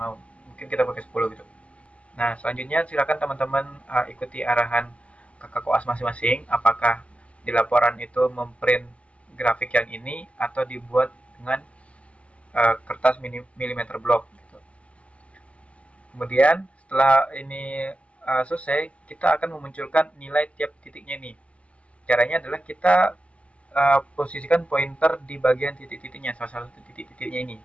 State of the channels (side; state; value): right; late; 0.063 ms